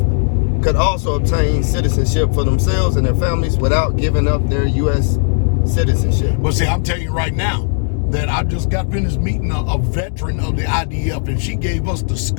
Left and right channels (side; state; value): right; silent; digital silence